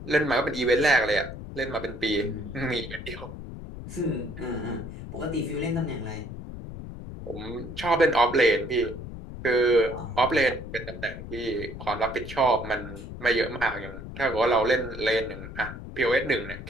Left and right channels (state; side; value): noise; left; rumble, 11 dB below the sound